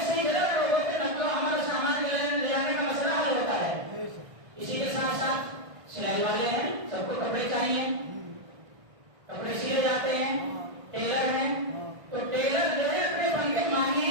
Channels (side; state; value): left; late; 1.5 ms